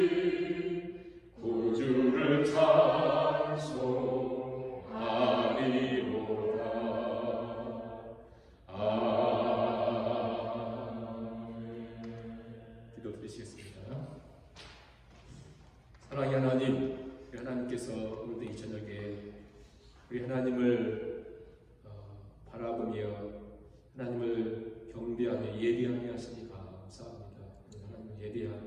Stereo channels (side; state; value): both; identical; correlation 1.00